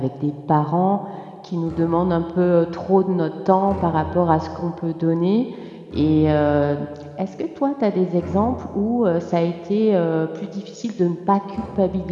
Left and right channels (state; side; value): identical; both; correlation 1.00